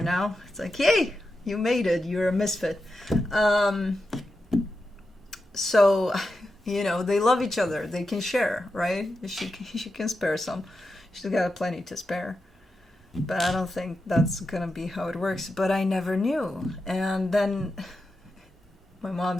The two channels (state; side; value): normal; both; correlation 0.89